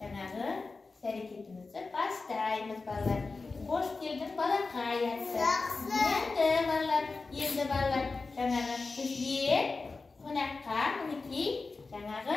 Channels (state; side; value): quieter; right; 4.0 dB